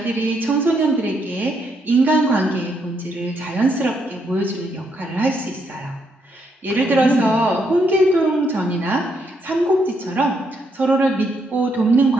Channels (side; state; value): both; normal; correlation 0.76